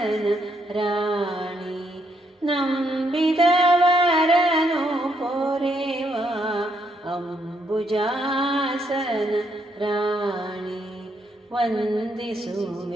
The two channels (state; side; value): normal; both; correlation 0.74